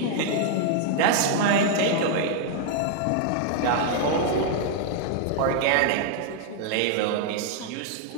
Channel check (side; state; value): both; different; correlation 0.00